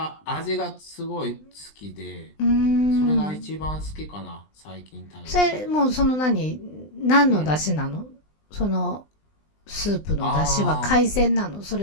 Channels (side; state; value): right; late; 20 ms